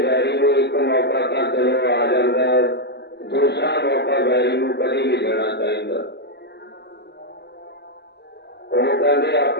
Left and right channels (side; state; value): right; late; 0.50 ms